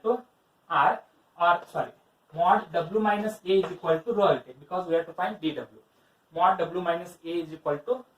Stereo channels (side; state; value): both; identical; correlation 1.00